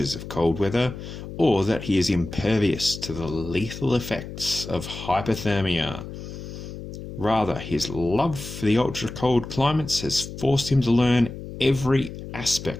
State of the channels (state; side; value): noise; left; hum, 10 dB below the sound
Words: of cold weather or that he is impervious to the lethal effects of hypothermia. Rather, his love for the ultra-cold climates has forced him to learn every